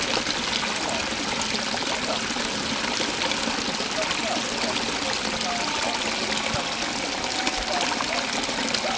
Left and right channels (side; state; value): both; identical; correlation 1.00